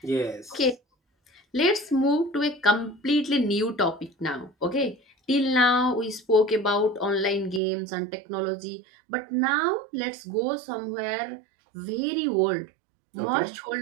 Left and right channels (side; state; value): left; drops out; at 7.6 s